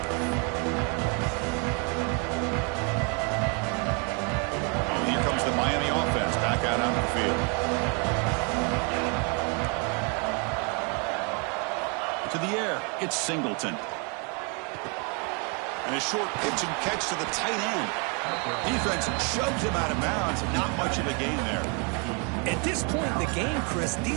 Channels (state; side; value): quieter; left; 35.1 dB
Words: Miami offense back out on the field. To the air, it's Singleton. And a short pitch and catch to the tight end. Defense shoves him out of bounds. Not much of a gain there. At this point in the game, Chris,